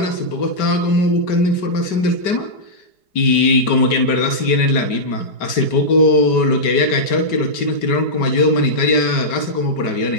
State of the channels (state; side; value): late; right; 5.2 ms